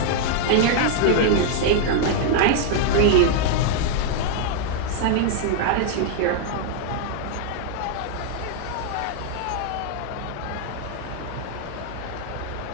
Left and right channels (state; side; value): different; both; correlation -0.01